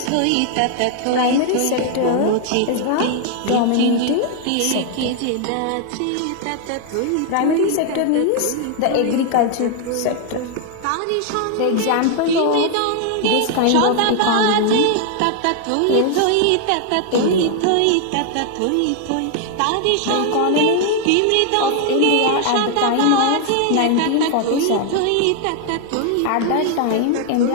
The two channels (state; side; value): different; both; correlation 0.00